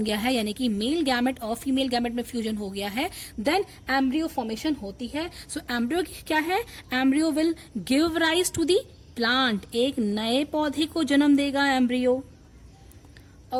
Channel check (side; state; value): both; identical; correlation 1.00